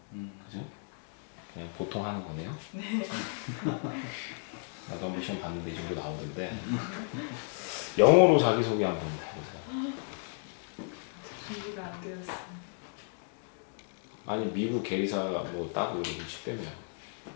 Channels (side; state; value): right; silent; 56 dB below the other